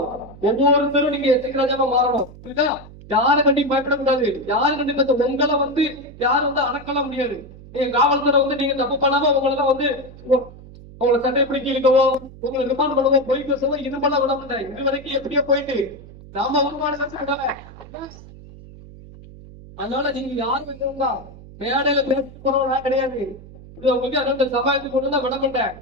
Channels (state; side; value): noise; right; hum, 18 dB below the sound